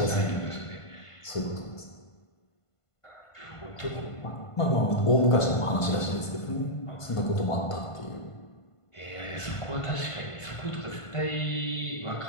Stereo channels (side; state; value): right; late; 1.5 ms